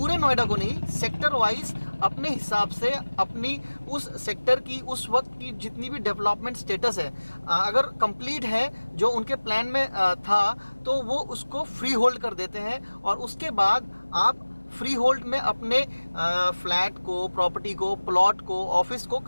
नोएडा को नहीं, सेक्टर वाइज अपने हिसाब से अपनी उस सेक्टर की उस वक्त की जितनी भी डेवलपमेंट स्टेटस है अगर कंप्लीट है जो उनके प्लान में था, तो वो उसको फ्री होल्ड कर देते हैं। और उसके बाद आप फ्री होल्ड में अपने फ्लैट को, प्रॉपर्टी को, प्लॉट को, ऑफिस को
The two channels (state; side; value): inverted; both; correlation -1.00